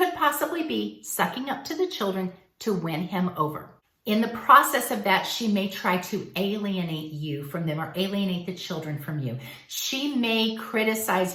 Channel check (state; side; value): identical; both; correlation 1.00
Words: possibly be sucking up to the children to win him over. In the process of that, she may try to alienate you from them or alienate the children from you. She may criticize